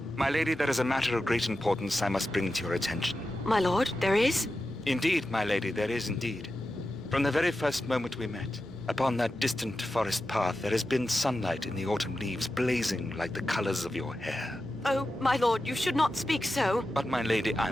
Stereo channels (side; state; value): both; normal; correlation 0.91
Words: My lady, there is a matter of great importance I must bring to your attention. My lord, there is? Indeed, my lady, there is indeed. From the very first moment we met, upon that distant forest path, there has been sunlight in the autumn leaves blazing like the colors of your hair. Oh, my lord, you should not speak so. But, my lady, I